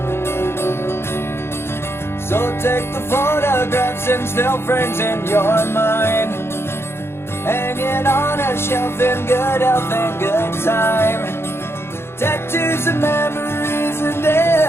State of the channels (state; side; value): late; right; 0.12 ms